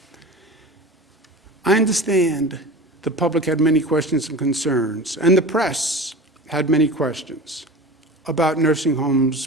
I understand the public had many questions and concerns, and the press had many questions about nursing homes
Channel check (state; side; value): normal; both; correlation 0.34